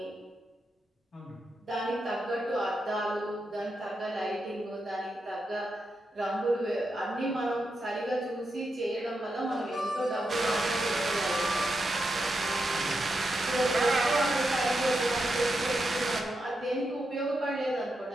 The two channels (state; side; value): normal; both; correlation 0.85